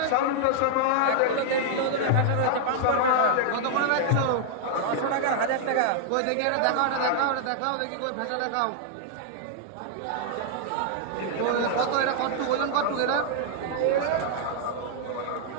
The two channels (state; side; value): different; both; correlation -0.01